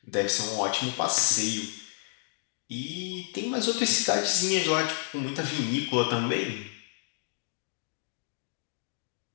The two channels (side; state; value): right; silent; 58 dB below the other